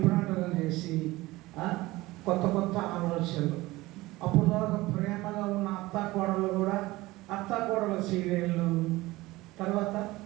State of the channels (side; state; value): left; quieter; 19.5 dB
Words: చేసి కొత్త ఆలోచనలు. అప్పుడు దాకా ప్రేమగా ఉన్న అత్తాకోడలు కూడా అత్తాకోడల సీరియళ్ళు, తర్వాత